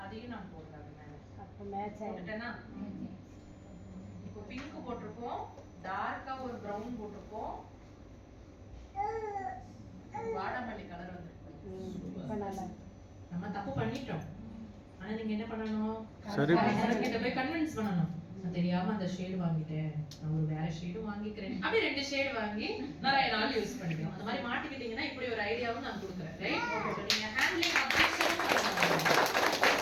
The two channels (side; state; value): both; identical; correlation 1.00